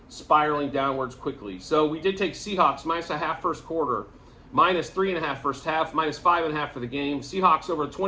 spiraling downwards quickly. So we did take Seahawks minus a half first quarter, minus 3.5 first half, minus 5.5 for the game. Seahawks over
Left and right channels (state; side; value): identical; both; correlation 1.00